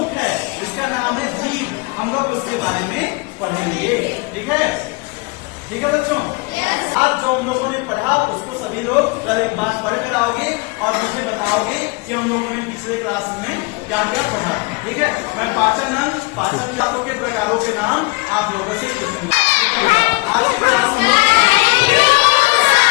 है के बारे में पढ़ेंगे। ठीक है, ठीक है बच्चों। आज जो हम लोगों ने पढ़ा उसको सभी लोग कल एक बार पढ़ कर आओगे और मुझे बताओगे कि हम लोगों ने पिछले क्लास में क्या क्या पढ़ा। ठीक है, मैं पाचन के प्रकारों के नाम आप लोगों से पूछूंगा। आज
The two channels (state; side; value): quieter; right; 26.7 dB